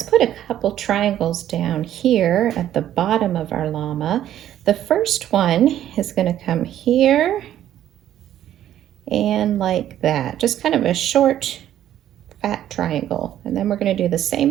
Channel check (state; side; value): quieter; left; 11.7 dB